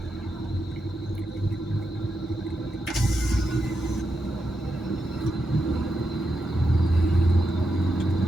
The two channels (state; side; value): normal; both; correlation 0.85